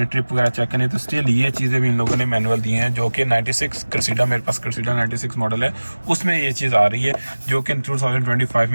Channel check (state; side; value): inverted; both; correlation -1.00